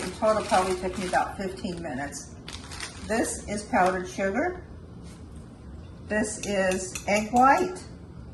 total probably took me about 15 minutes. This is powdered sugar. This is egg white.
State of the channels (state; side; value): identical; both; correlation 1.00